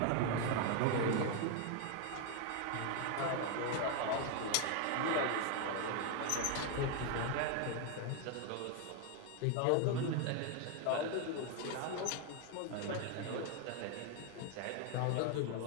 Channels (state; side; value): different; both; correlation 0.01